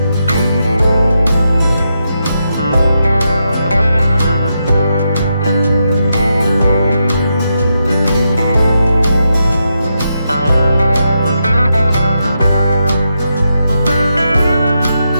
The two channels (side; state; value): both; inverted; correlation -0.84